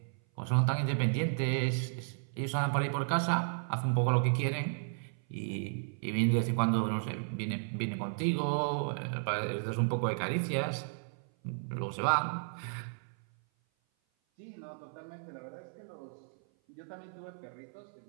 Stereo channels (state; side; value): silent; left; 55 dB below the other